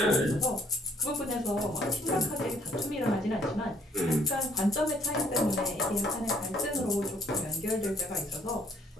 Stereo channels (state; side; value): normal; both; correlation 0.63